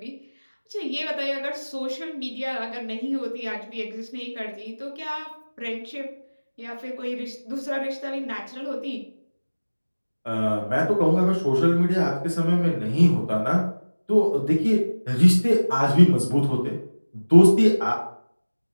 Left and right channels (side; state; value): both; inverted; correlation -1.00